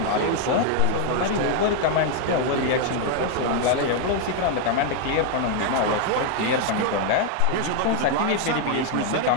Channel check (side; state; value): both; different; correlation 0.00